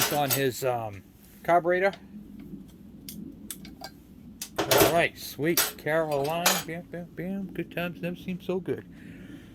on his carburetor. Alright, sweet. Caroline. Bam, bam, bam. Good times never seem so good.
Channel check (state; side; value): identical; both; correlation 1.00